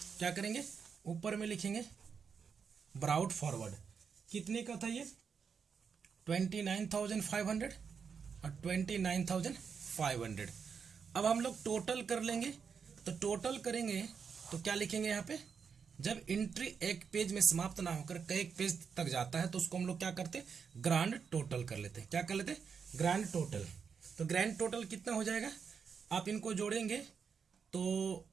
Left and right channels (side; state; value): left; quieter; 6.3 dB